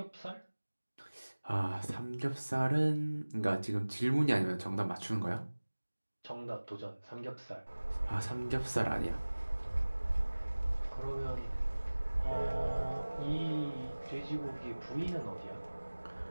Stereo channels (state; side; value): inverted; both; correlation -1.00